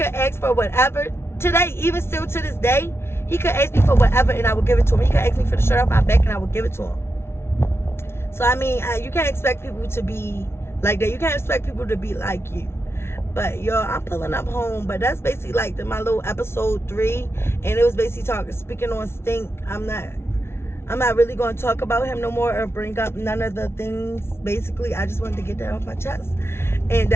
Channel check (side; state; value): right; late; 0.12 ms